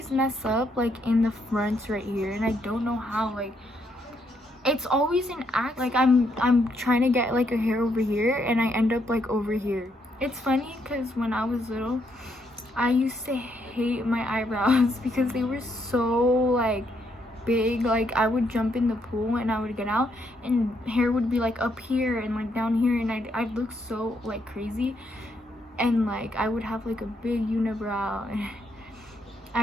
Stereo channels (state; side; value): normal; both; correlation 0.75